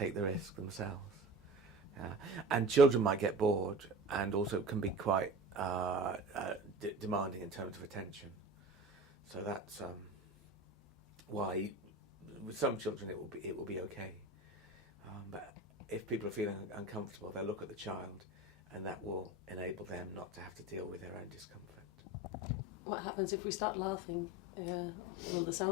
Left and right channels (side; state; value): both; normal; correlation 0.34